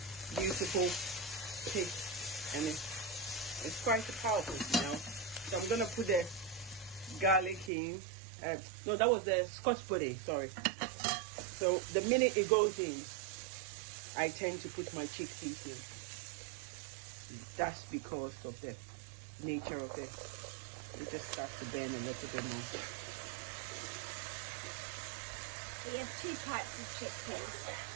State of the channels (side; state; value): left; drops out; at 7.7 s